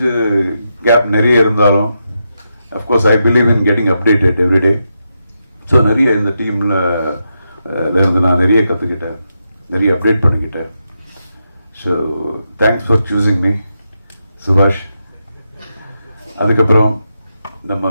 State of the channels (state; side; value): inverted; both; correlation -0.85